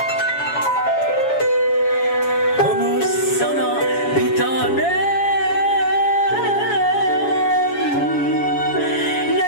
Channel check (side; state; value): right; late; 7.2 ms